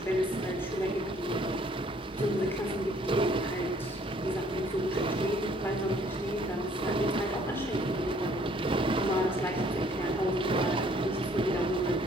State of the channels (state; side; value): normal; both; correlation 0.60